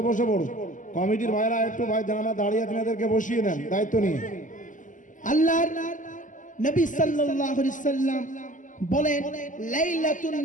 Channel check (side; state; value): right; late; 0.37 ms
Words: বসে পড়ুন। কমিটির ভাইরা একটু ভাই জানারা দাঁড়িয়ে আছেন এদেরকে বসিয়ে নেন দায়িত্ব নিয়ে। আল্লাহর নবী সাল্লাল্লাহু আলাইহি সাল্লাম বলেন, লাইলাতুন